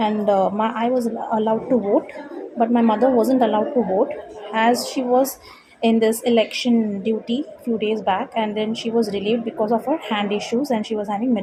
I was allowed to vote, but my mother wasn't allowed to vote as she was in this election duty few days back, and then she was relieved because of her hand issues and she was having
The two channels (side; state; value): both; identical; correlation 1.00